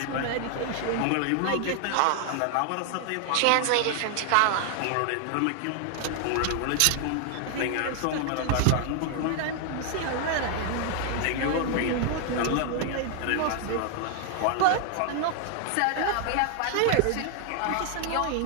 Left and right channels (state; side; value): different; both; correlation 0.00